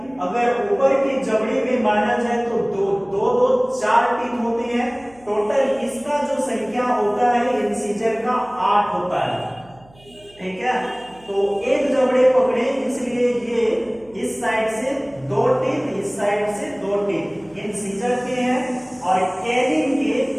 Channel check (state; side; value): noise; right; hum, 27 dB below the sound